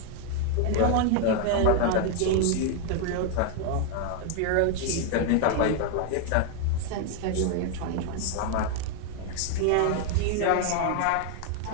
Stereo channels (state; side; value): different; both; correlation 0.00